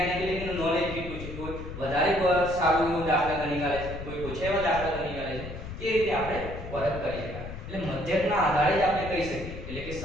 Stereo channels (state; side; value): noise; left; rumble, 9 dB below the sound